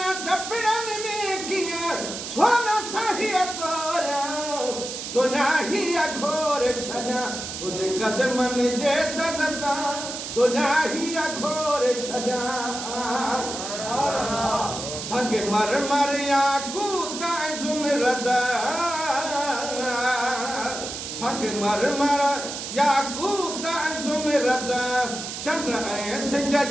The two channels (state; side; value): noise; right; hiss, 7 dB below the sound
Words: चपड़न में किया सोना सही तोरा दुनिया ही अघोर सजा। तुझे कदमन जे दज़ता दुनिया ही अघोर सजा। संग मर मर याकूत ज़ुमरद संग मर मर याकूत ज़ुमरद चंद्र ऐं सिज